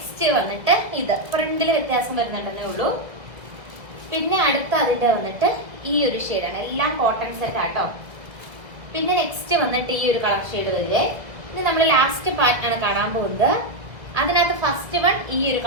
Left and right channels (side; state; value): left; late; 2.1 ms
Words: വന്നിട്ട് ഇത് പ്രിന്റിൽ വ്യത്യാസം വരുന്നുണ്ടെന്നേ ഉള്ളൂ. പിന്നെ അടുത്ത അതിന്റെ വന്നിട്ട് ഈ ഒരു ഷെയ്ഡാണ്. എല്ലാം കോട്ടൺ സെറ്റ് ആട്ടോ. പിന്നെ നെക്സ്റ്റ് വന്നിട്ട് ഈ ഒരു കളർ ഷെയ്ഡ് വരുന്നത്. ഇനി നമ്മൾ ലാസ്റ്റ് പാറ്റേൺ കാണാൻ പോകുന്നത്. അതിനകത്ത് ഫസ്റ്റ് വൺ ഈ ഒരു